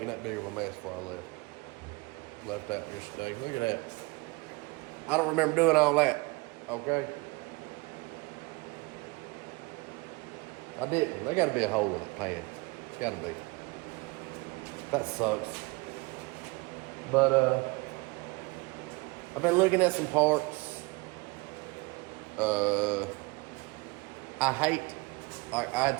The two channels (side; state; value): left; quieter; 25.6 dB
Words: that big of a mess before I left out yesterday. Look at that. I don't remember doing all that. Okay. I didn't. There gotta be a hole in the pan. It's gotta be. That sucks. But I've been looking at some parts. I hate, I